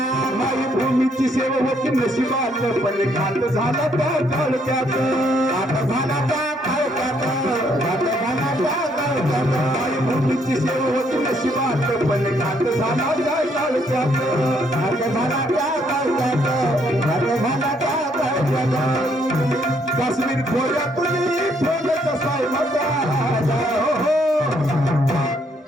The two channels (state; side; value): normal; both; correlation 0.70